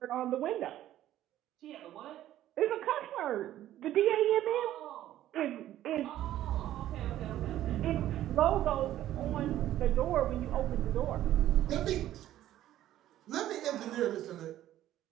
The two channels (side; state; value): left; quieter; 13.0 dB